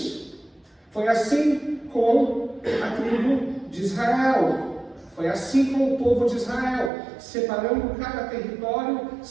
Foi assim com a tribo de Israel. Foi assim com o povo de Israel, separando cada território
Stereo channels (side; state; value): left; drops out; at 6.9 s